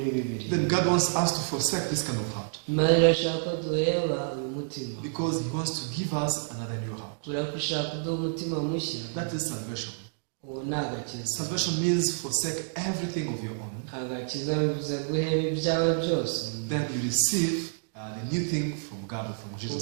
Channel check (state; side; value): silent; left; digital silence